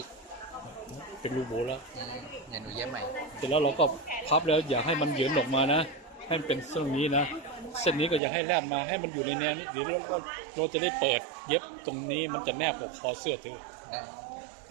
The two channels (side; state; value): left; drops out; at 8.2 s